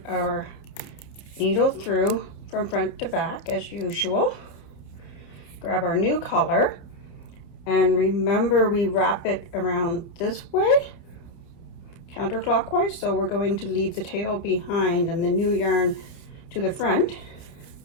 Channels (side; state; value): right; late; 29 ms